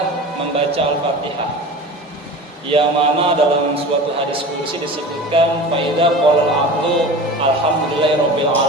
membaca Al-Fatihah, yang mana dalam suatu hadis qudsi disebutkan faida qala al-abdu alhamdulillahirabbil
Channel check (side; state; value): both; normal; correlation 0.35